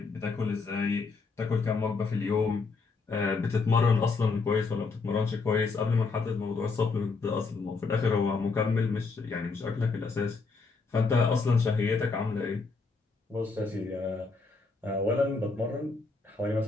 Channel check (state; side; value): quieter; right; 4.3 dB